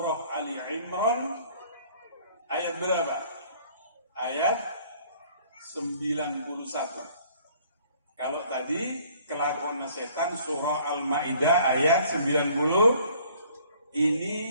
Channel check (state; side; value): inverted; both; correlation -0.57